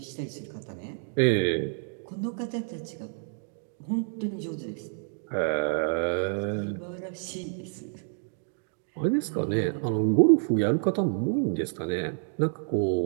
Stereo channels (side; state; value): left; silent; digital silence